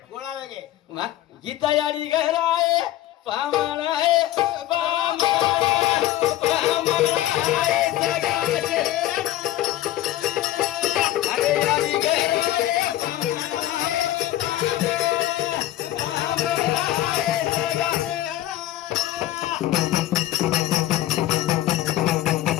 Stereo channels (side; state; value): right; quieter; 14.4 dB